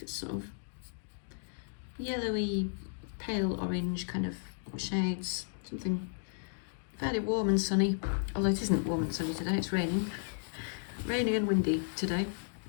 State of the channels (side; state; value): right; silent; digital silence